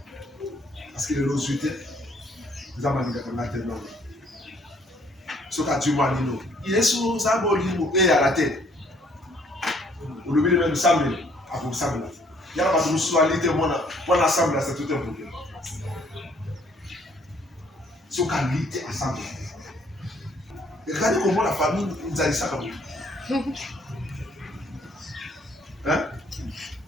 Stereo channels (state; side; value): normal; both; correlation 0.63